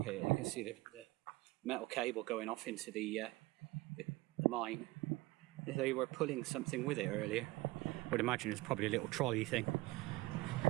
here, you can see the metal cable going off into the mine. They were pulling something with it earlier. I would imagine it's probably a little trolley thing.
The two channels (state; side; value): quieter; left; 20.5 dB